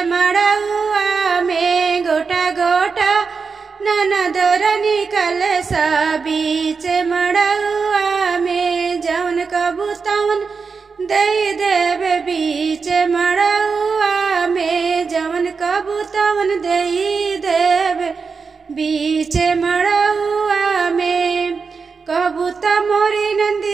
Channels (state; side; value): quieter; left; 5.1 dB